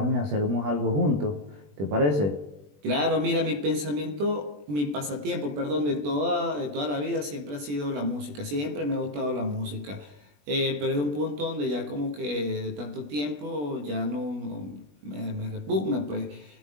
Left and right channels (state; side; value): late; left; 20 ms